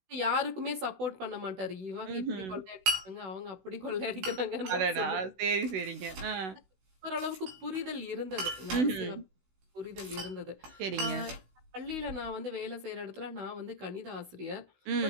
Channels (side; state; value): left; late; 16 ms